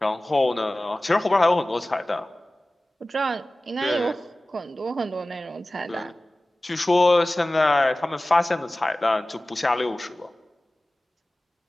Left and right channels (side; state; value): both; normal; correlation 0.97